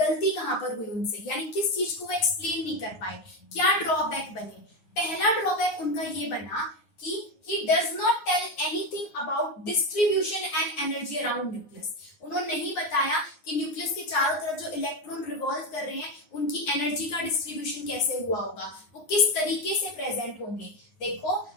कहां पर हुई उनसे, यानी किस चीज को वो एक्सप्लेन नहीं कर पाए, क्या ड्रॉबैक बने। पहला ड्रॉबैक उनका ये बना कि he does not tell anything about distribution and energy around nucleus। उन्होंने नहीं बताया कि न्यूक्लियस के चारों तरफ जो इलेक्ट्रॉन रिवॉल्व कर रहे हैं उनकी एनर्जी का डिस्ट्रीब्यूशन कैसे हुआ होगा, वो किस तरीके से प्रेजेंट होंगे। देखो,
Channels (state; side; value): late; right; 9.5 ms